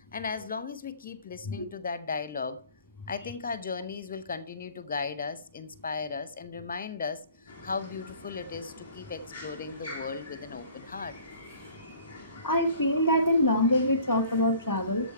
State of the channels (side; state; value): both; inverted; correlation -0.51